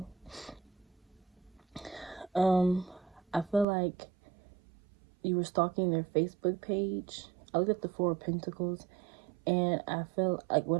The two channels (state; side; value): drops out; left; at 3.7 s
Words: I feel like you were stalking their Facebook page. I looked at the Four of Pentacles, and I feel like